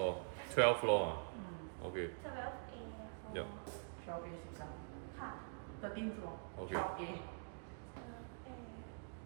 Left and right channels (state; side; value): silent; left; digital silence